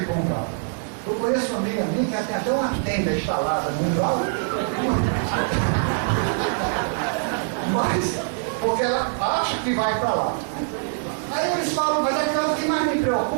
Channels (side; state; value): left; silent; digital silence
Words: para o umbral. Eu conheço uma amiga minha que tem até uma tenda instalada no umbral, mas porque ela acha que vai para lá. Aí eles falam, mas o que mais me